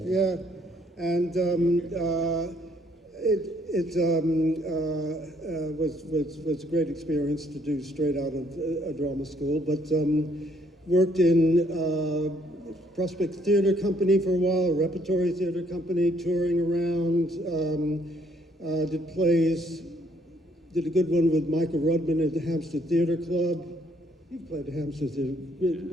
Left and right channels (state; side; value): normal; both; correlation 0.67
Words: Yeah, and was a great experience to do straight out of a drama school, but worked in Prospect Theatre Company for a while, a repertory theatre company, touring around, did plays, did a good one with Michael Rudman at the Hampstead Theatre Club. You've played at Hampstead Theatre,